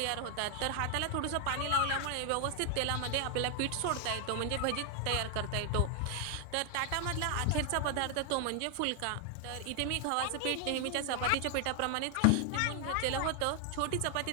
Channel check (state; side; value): different; both; correlation 0.00